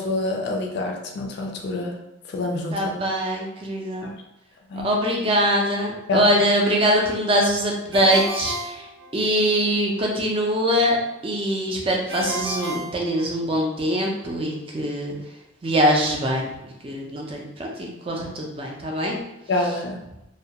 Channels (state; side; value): normal; both; correlation 0.19